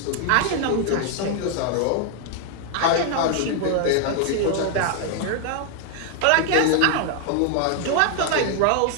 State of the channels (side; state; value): both; different; correlation 0.00